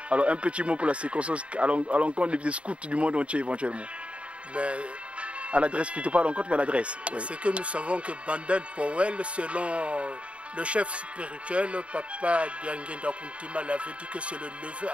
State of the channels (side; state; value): left; late; 0.061 ms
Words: alors un petit mot pour la circonstance à l'encontre des scouts du monde entier éventuellement. Mais à l'adresse plutôt, pas l'encontre, mais à l'adresse. Oui. C'est que nous savons que Baden Powell, selon le chef spirituel, Papa Diangenda Kuntima, l'avait dit que c'est le neveu